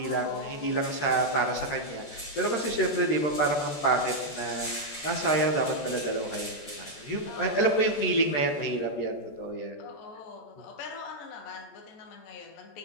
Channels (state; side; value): late; right; 14 ms